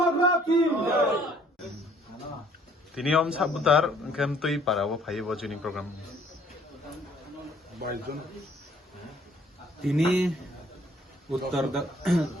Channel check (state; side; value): normal; both; correlation 0.60